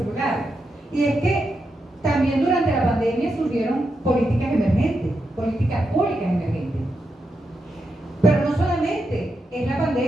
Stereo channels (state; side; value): normal; both; correlation 0.85